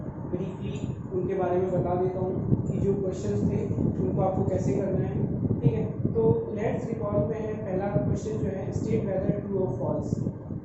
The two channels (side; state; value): both; identical; correlation 1.00